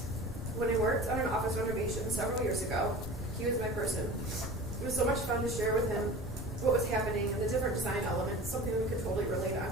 When I worked on an office renovation several years ago, he was my person. It was so much fun to share with him what was happening and the different design elements, something we could totally relate on.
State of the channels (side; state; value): both; normal; correlation 0.37